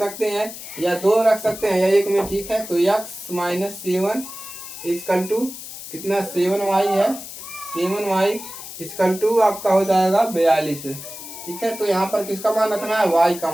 हैं, या 2 रख सकते हैं, या 1 में। ठीक है, तो x - 7 इक्वल टू कितना, 7y है, 7y इक्वल टू आपका हो जाएगा 42। ठीक है, तो यहाँ पर किसका मान रखना है, y का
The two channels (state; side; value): noise; left; hiss, 12 dB below the sound